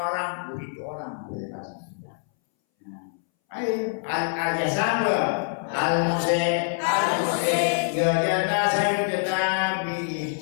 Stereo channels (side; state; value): right; silent; 61 dB below the other